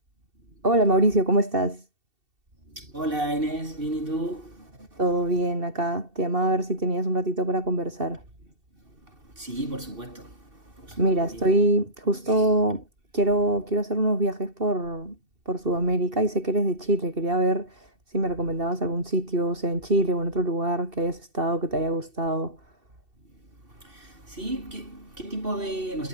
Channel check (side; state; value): left; late; 2.7 ms